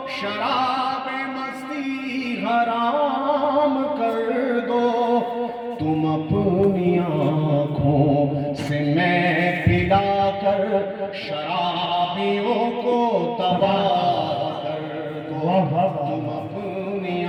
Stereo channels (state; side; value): identical; both; correlation 1.00